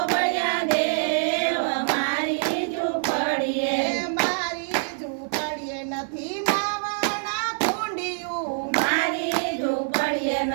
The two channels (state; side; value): silent; left; 58 dB below the other